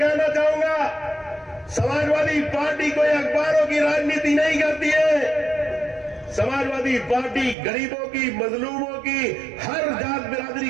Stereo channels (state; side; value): drops out; left; at 7.6 s